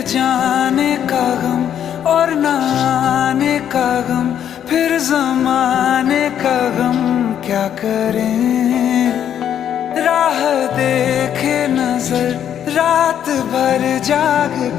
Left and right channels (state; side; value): quieter; right; 9.6 dB